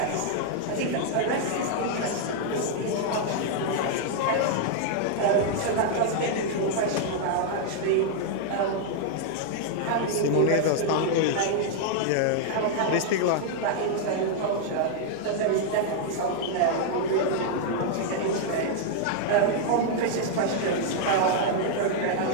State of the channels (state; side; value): different; both; correlation -0.01